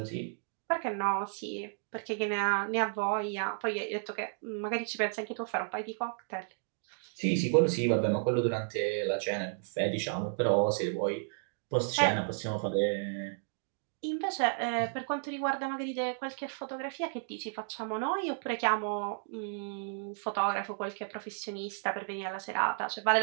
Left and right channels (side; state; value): left; silent; digital silence